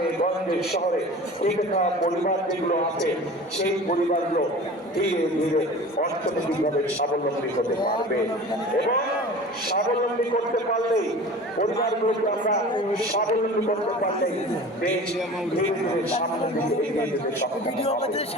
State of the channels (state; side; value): normal; both; correlation 0.39